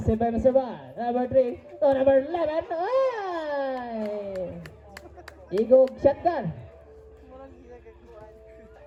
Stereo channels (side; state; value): both; identical; correlation 1.00